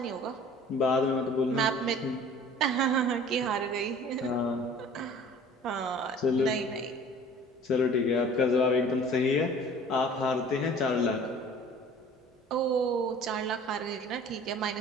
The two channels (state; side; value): normal; both; correlation 0.47